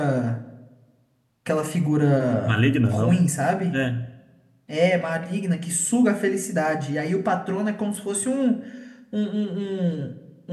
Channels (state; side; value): identical; both; correlation 1.00